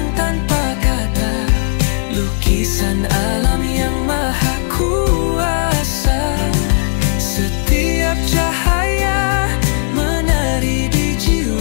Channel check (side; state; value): right; silent; digital silence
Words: tanpa kata, lukisan alam yang maha kuasa. Setiap cahaya menari di